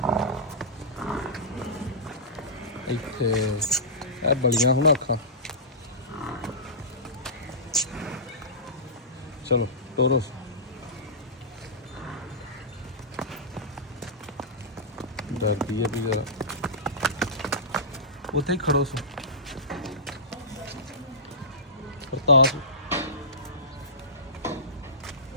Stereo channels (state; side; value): normal; both; correlation -0.20